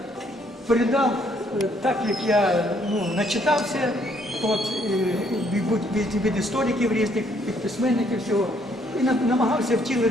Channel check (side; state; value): both; normal; correlation 0.68